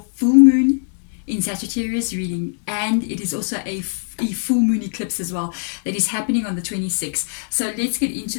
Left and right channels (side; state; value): right; silent; digital silence